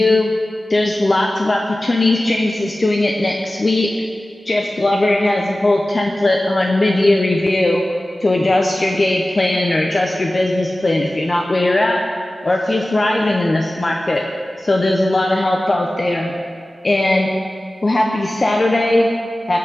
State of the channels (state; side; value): normal; both; correlation 0.96